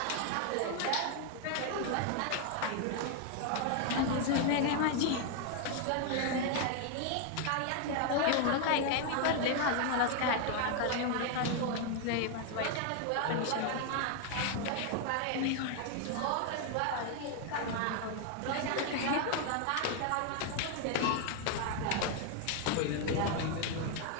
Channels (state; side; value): different; both; correlation 0.00